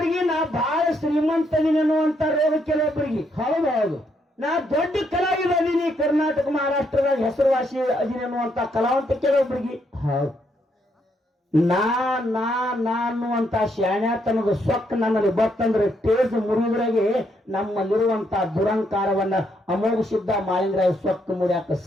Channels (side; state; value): both; normal; correlation 0.75